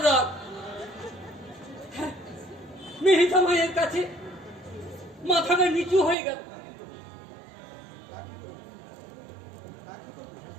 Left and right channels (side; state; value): left; drops out; at 6.2 s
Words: রাগ। মেহিতা মায়ের কাছে মাথাটা নিচু হয়ে গেল।